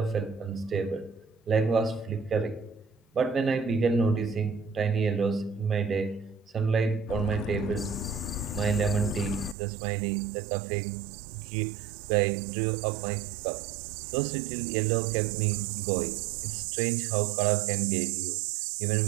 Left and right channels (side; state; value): left; drops out; at 9.6 s